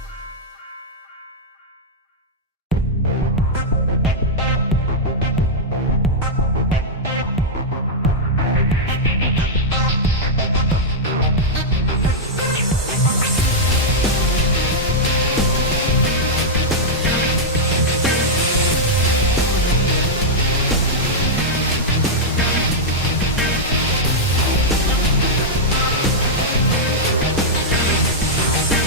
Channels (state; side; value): normal; both; correlation -0.06